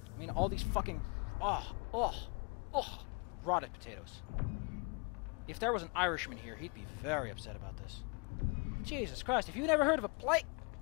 mean, all these fucking... rotted potatoes. If there was an Irishman here, he'd be very upset about this. Jesus Christ, have you never heard of a plate?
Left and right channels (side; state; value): right; quieter; 32.8 dB